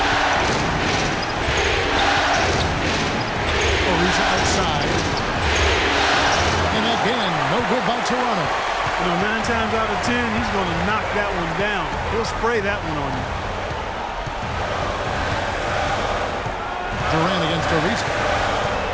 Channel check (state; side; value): identical; both; correlation 1.00